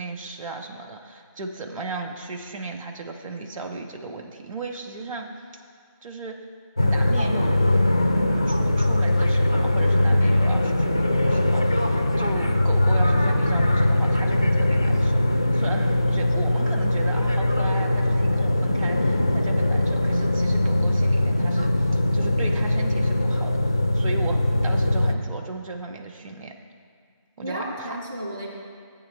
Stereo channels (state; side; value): inverted; both; correlation -0.93